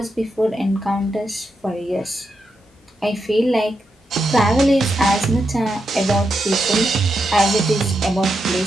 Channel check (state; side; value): normal; both; correlation 0.85